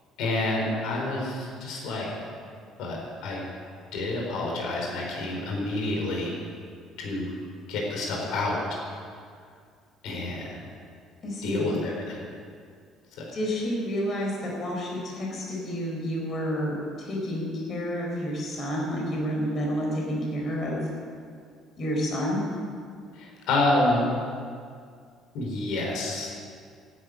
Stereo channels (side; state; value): both; normal; correlation 0.62